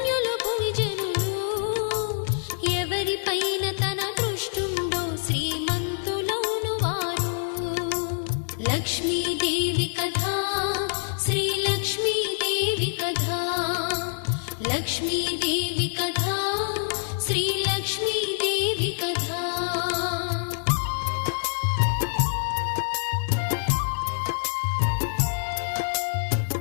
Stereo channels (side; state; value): right; silent; digital silence